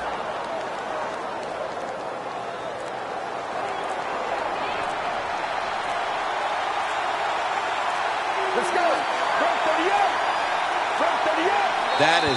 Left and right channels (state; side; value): identical; both; correlation 1.00